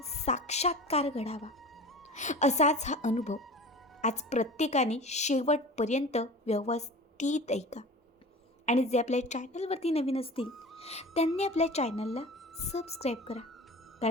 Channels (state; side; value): normal; both; correlation 0.37